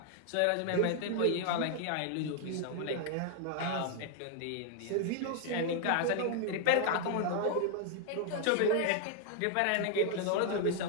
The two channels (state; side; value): different; both; correlation 0.00